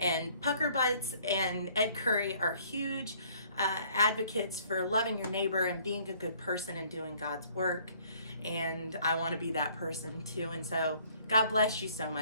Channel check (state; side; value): inverted; both; correlation -0.59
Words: Pucker Butts and Ed Curry are huge advocates for loving your neighbor and being a good person and doing God's work. And I want to be that person too. And so God bless you so